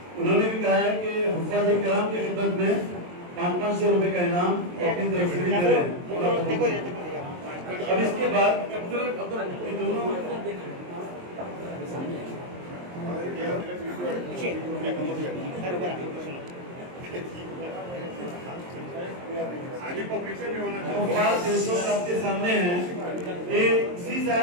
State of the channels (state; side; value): late; left; 23 ms